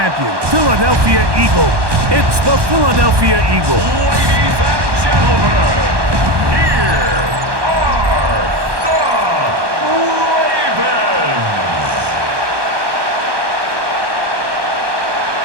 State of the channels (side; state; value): left; late; 1.1 ms